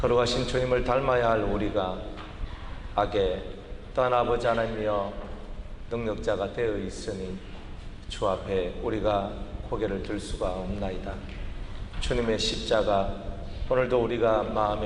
걸어가신 주님을 닮아야 할 우리가 악에 또한 아버지 하나님이여 능력자가 되어 있으니 주 앞에 우리가 고개를 들 수가 없나이다. 주님의 십자가 오늘도 우리가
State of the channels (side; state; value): both; identical; correlation 1.00